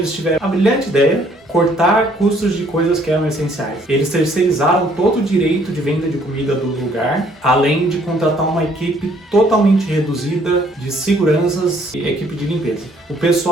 tiveram a brilhante ideia cortar custos de coisas que eram essenciais. Eles terceirizaram todo o direito de venda de comida do lugar, além de contratar uma equipe totalmente reduzida de seguranças e equipe de limpeza. O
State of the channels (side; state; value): both; normal; correlation 0.63